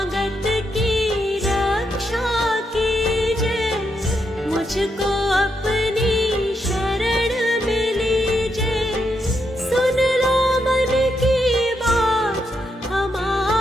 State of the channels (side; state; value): both; normal; correlation 0.81